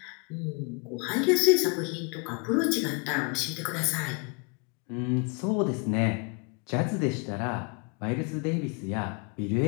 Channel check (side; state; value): right; quieter; 33.4 dB